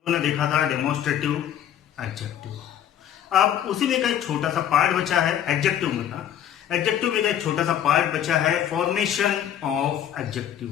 हमने देखा था डेमोन्स्ट्रेटिव एडजेक्टिव। अब उसी में का एक छोटा सा पार्ट बचा है एडजेक्टिव में का। एडजेक्टिव में का एक छोटा सा पार्ट बचा है फॉर्मेशन ऑफ एडजेक्टिव।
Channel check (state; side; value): quieter; right; 10.3 dB